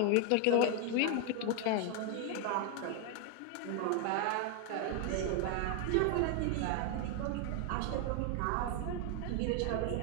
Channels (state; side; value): different; both; correlation 0.01